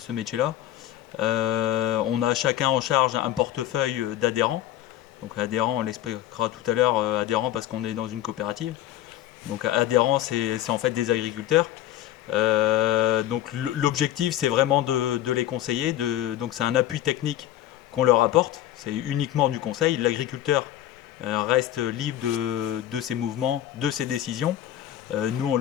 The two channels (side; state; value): right; quieter; 12.8 dB